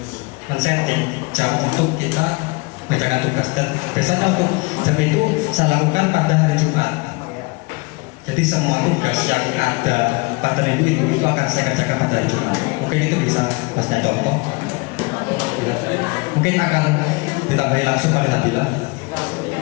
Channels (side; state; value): right; quieter; 26.8 dB